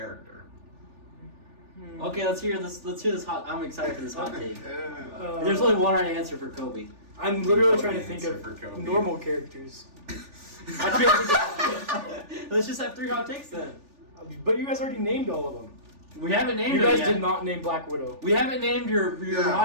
Okay, let's hear this hot. I'm excited for this hot take. Uh, There's only one right answer for Kobe. I'm literally What trying to an think answer of for Kobe. normal characters. Let's just have 3 hot takes then. But you guys already named all of them. We haven't named You her guys yet. did not name Black Widow. We haven't named your Yeah.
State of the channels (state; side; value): late; left; 3.4 ms